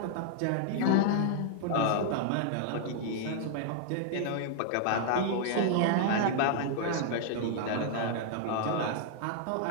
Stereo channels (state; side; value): different; both; correlation -0.01